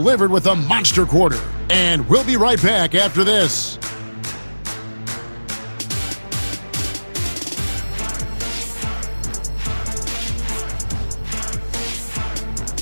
with a monster quarter. And we'll be right back after this.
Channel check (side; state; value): both; inverted; correlation -1.00